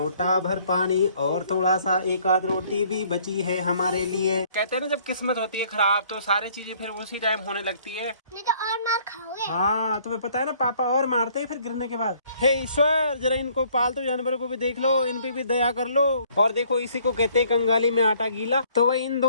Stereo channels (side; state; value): both; inverted; correlation -0.61